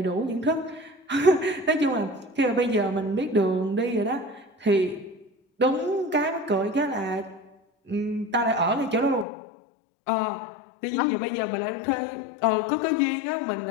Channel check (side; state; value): right; drops out; at 9.2 s